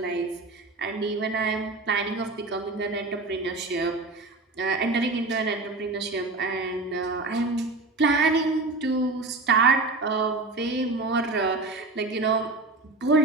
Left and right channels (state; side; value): quieter; left; 3.4 dB